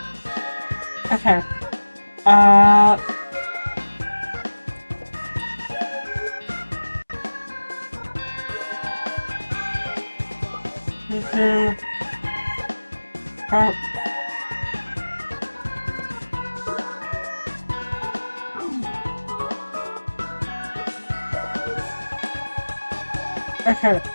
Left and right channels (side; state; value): both; inverted; correlation -1.00